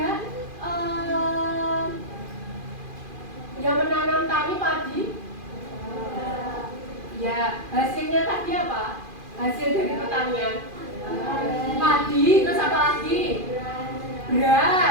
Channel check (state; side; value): late; left; 2.4 ms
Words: yang menanam tani padi? Ya, hasilnya tadi apa? Hasil dari pertanian padi, terus apa lagi?